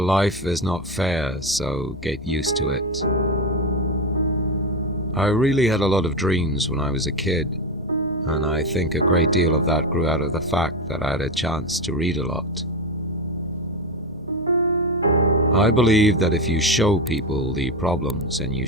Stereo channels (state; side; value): normal; both; correlation 0.16